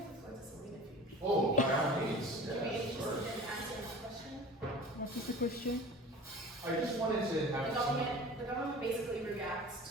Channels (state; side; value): normal; both; correlation 0.39